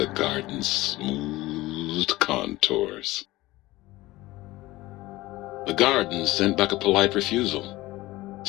garden's smooth contours. The garden sent back a polite refusal,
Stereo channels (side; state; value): right; quieter; 18.7 dB